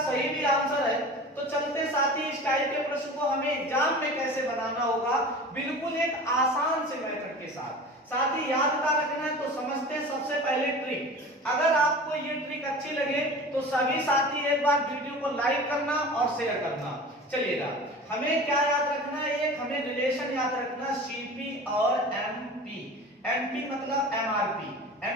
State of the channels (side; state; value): both; normal; correlation 0.37